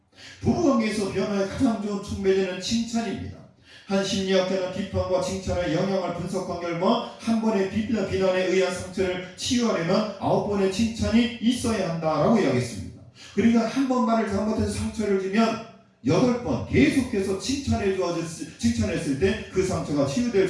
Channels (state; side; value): identical; both; correlation 1.00